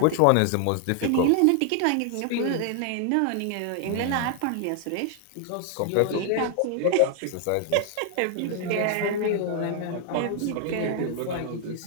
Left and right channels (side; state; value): both; different; correlation 0.00